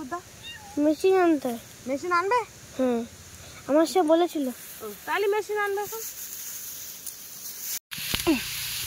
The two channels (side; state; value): both; identical; correlation 1.00